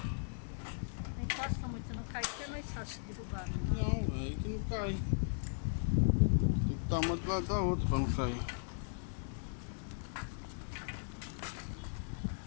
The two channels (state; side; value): silent; right; 53 dB below the other